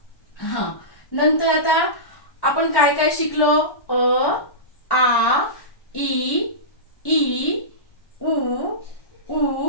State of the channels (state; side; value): late; right; 1.1 ms